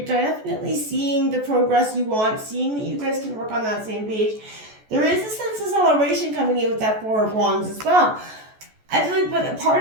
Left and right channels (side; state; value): left; late; 14 ms